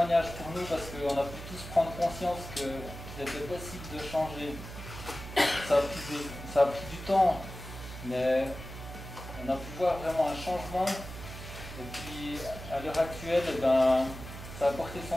pour nous parce qu'on a pu tous prendre conscience qu'il était possible de changer. Ça a pris du temps, mais on a pu voir vraiment un changement. Et puis à l'heure actuelle, eh ben, ça a porté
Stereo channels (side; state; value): right; noise; hum, 11 dB below the sound